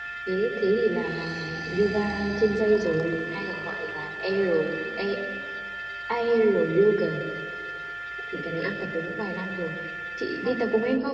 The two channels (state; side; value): noise; right; hum, 28 dB below the sound